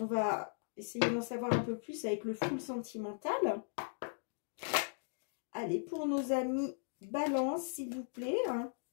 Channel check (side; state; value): right; silent; digital silence